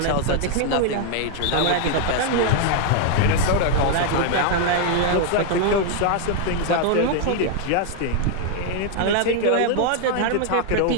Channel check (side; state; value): both; different; correlation 0.00